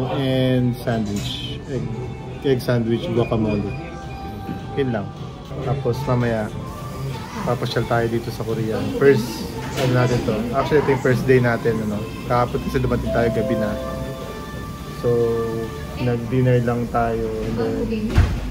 and sandwich. Egg sandwich, guacamole. Yun lang. Tapos mamaya papasyal tayo dito sa Korea. First, ano natin to? Actually, ito yung first day natin, ano? Kahapon kasi dumating tayo gabi na. So, nag-dinner lang tayo and then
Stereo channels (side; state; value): both; identical; correlation 1.00